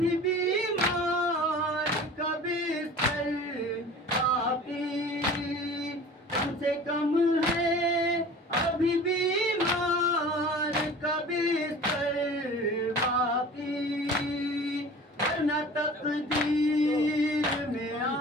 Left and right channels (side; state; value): both; normal; correlation 0.42